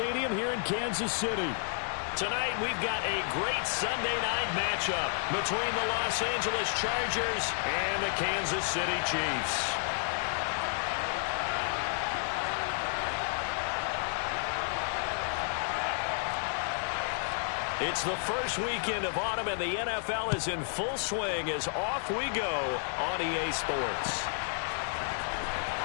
here in Kansas City. Tonight, we've got a great Sunday night matchup between the Los Angeles Chargers and the Kansas City Chiefs. It's the first weekend of autumn, and the NFL is in full swing as off we go on EA Sports.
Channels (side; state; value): right; silent; digital silence